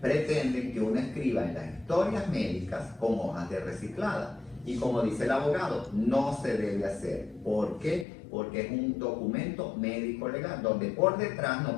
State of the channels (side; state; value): right; drops out; at 8.1 s